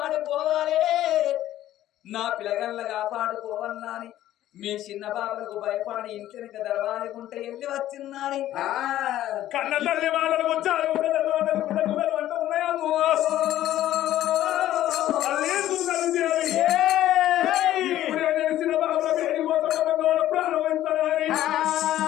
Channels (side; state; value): right; quieter; 13.3 dB